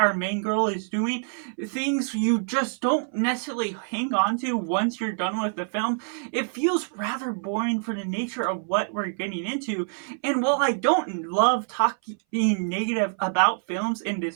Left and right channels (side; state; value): left; silent; 59 dB below the other